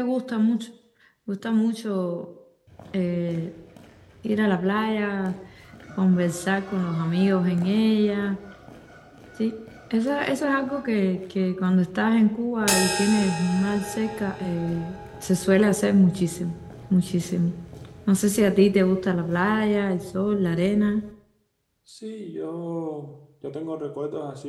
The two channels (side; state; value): both; identical; correlation 1.00